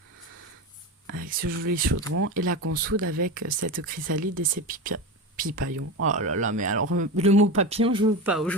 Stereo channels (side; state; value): both; normal; correlation 0.22